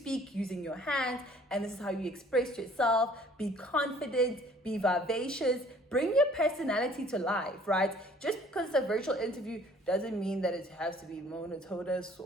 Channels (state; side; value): normal; both; correlation 0.55